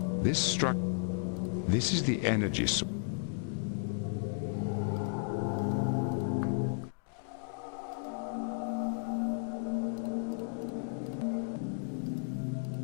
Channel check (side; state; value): right; silent; digital silence